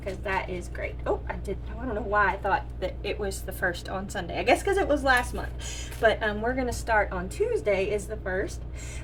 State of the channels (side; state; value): both; identical; correlation 1.00